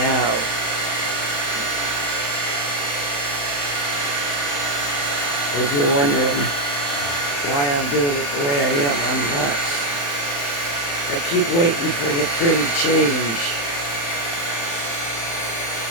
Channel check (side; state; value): right; late; 35 ms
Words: If you're wondering why I'm doing it the way I am, I'm nuts. I keep waiting for the pretty change.